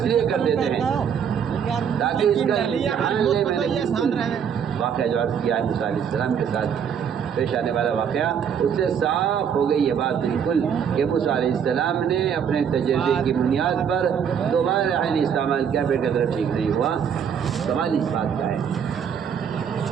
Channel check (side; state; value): left; quieter; 7.7 dB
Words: لیے کر دیتے ہیں تاکہ اس کا امتحان لے۔ میں نے واقعہ جو عرض کیا ہے موسیٰ علیہ السلام کے ساتھ پیش آنے والا واقعہ، اس سے صاف ہو گئی یہ بات بالکل کہ موسیٰ علیہ السلام نے اپنے تجربے کی بنیاد پر دوبارہ ریحان استعمال کیا، پھر قدر ٹھیک نہیں ہوا۔ سوال اس بات کا ہے